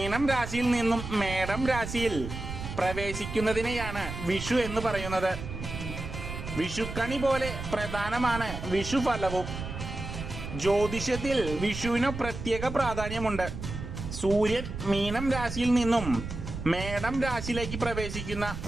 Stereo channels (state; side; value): noise; right; rumble, 8 dB below the sound